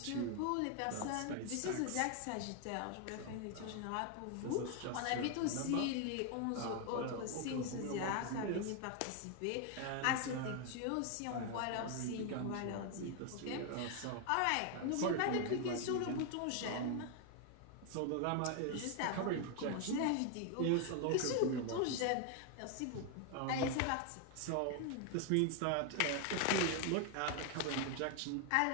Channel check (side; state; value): both; different; correlation 0.01